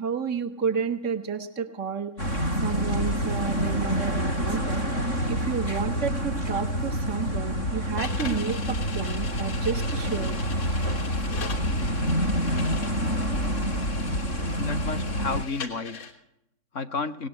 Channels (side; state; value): right; late; 3.6 ms